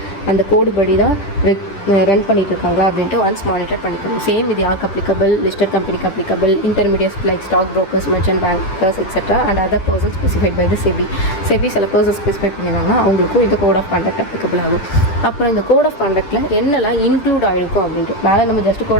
அந்த கோடு படி தான் ரன் பண்ணிகிட்டு இருக்காங்களா அப்படின்ட்டு ஒன்ஸ் மானிட்டர் பண்ணிக்கணும். சேம் இது யாருக்கு அப்ளிகபிள்? லிஸ்டட் கம்பெனிக்கு applicable, intermediates like stock brokers, merchant bankers etcetera and other person specified by the SEBI. SEBI சில பர்சன் ஸ்பெசிஃபை பண்ணியிருந்தாங்கன்னா அவங்களுக்கும் இந்த கோட் ஆஃப் கான்டக்ட் அப்ளிகபிள் ஆகும். அப்புறம் இந்த கோட் ஆஃப் கான்டக்டில் என்னெல்லாம் இன்க்ளூட் ஆகிருக்கும் அப்படின்ட்டு மேலே நம்ம ஜஸ்ட்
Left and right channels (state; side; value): late; right; 10 ms